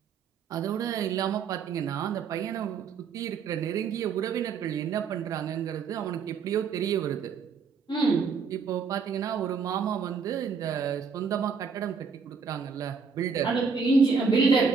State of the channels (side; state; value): left; quieter; 5.6 dB